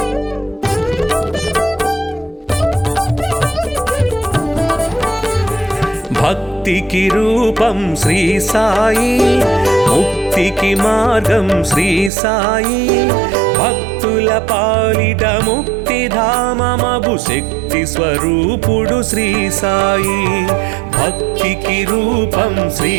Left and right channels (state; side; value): drops out; left; at 12.1 s